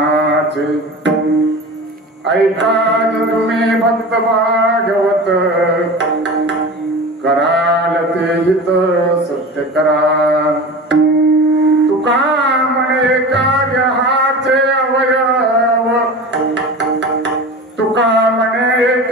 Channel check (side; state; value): both; normal; correlation 0.32